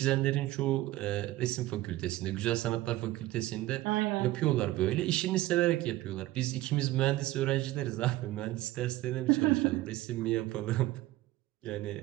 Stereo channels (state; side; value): quieter; left; 16.8 dB